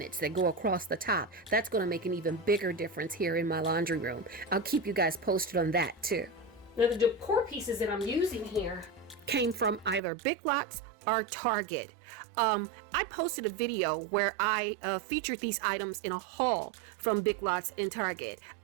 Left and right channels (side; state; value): left; drops out; at 10.0 s